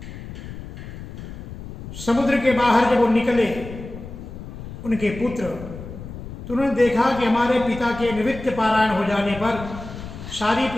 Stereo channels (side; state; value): left; noise; rumble, 11 dB below the sound